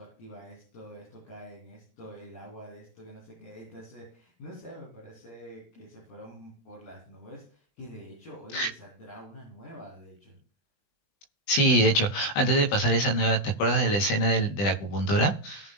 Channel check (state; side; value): late; right; 20 ms